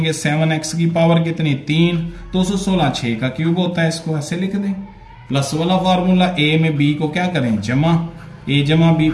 7x की पावर कितनी 3, 216 6 का क्यूब होता है, इसको ऐसे लिख दें। प्लस वाला फार्मूला, a में b को क्या करें जमा, a जमा b,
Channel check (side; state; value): both; identical; correlation 1.00